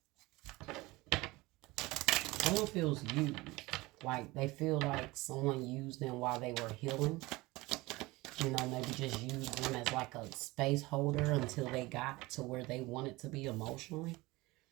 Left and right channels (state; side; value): quieter; left; 21.4 dB